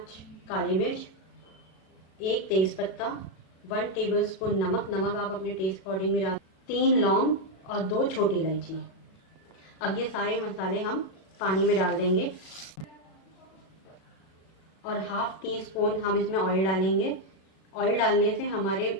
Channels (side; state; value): right; late; 37 ms